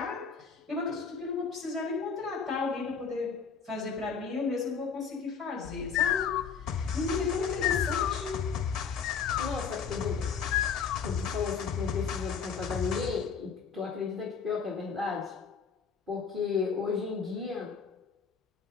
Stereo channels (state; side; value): quieter; right; 6.1 dB